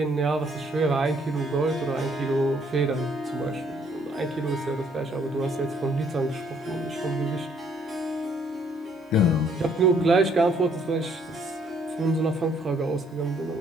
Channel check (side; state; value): both; normal; correlation 0.65